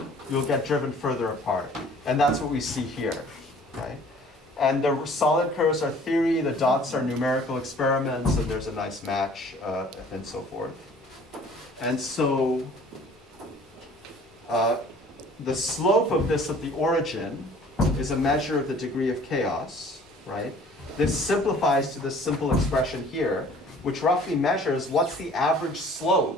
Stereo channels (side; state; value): both; normal; correlation 0.52